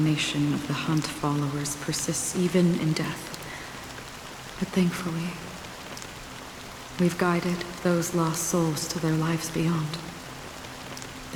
of the Hunt followers persists even in death. But thankfully, we've guided those lost souls to their lives beyond.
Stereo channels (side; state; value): both; identical; correlation 1.00